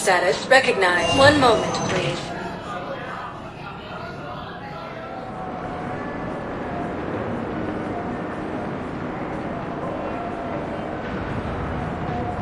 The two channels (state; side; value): identical; both; correlation 1.00